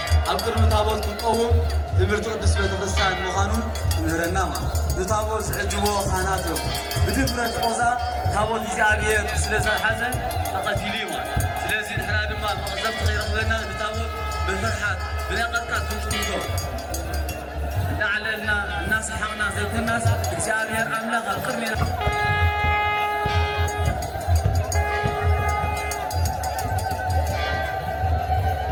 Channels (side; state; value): both; identical; correlation 1.00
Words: أبكر متابوت كقوم تمرتو قدس بيتفسان مخانون نهرنا ما نتابوت سعجبو خاناتو بدفرة قوزا تابوت إزعابير سلسة حزن تقتيلي ما سلسة نحنا دما مقزبت غير أخذنا نتابوت بالفرحات بلاقتك كنتو لعلنا الناس حقنا زي الناس እግዚአብሔር አምላክ አቅርሜ